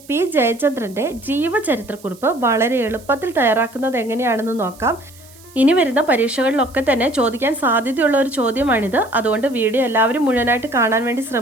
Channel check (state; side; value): noise; right; hiss, 24 dB below the sound